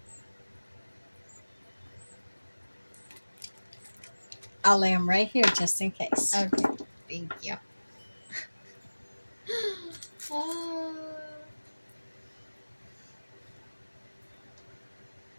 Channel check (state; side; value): inverted; both; correlation -1.00